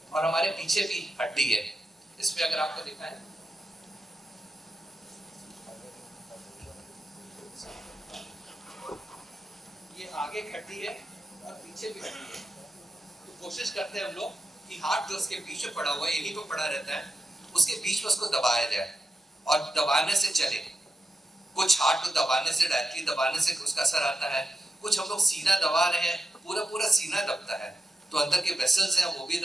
और हमारे पीछे भी हड्डी है। इसमें अगर आपको दिखाएं, ये आगे एक हड्डी है और पीछे भी हड्डी है। तो कोशिश करते हैं हम लोग कि हार्ट जो उसके बीच में पड़ा हुआ है, यहीं पे पड़ा रहता है, उसके बीच में उसको दबाया जाए और दबाने से चले। कुछ हार्ट को दबाने से, डायरेक्टली दबाने से उसका असर आता है। कुछ हम लोग सीना दबा रहे हैं, पूरा पूरा सीना दबता है तो अंदर के वेसल्स हैं वो भी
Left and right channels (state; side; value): normal; both; correlation 0.89